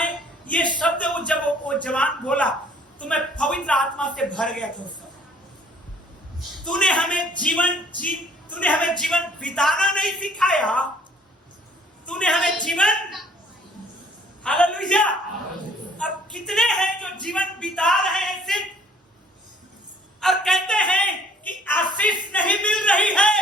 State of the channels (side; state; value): both; normal; correlation 0.57